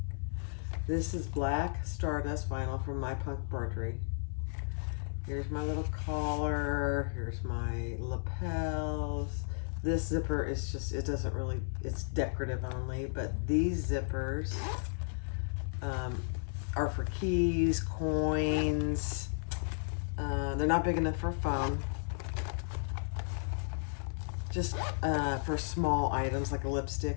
This is black Stardust vinyl from My Punk Embroidery. Here's my little collar. Here's my lapels. This zipper is just, it doesn't really, it's decorative only, but these zippers are for keys, coins. They're not big enough for a phone. Just for small items like a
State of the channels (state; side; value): silent; right; 55 dB below the other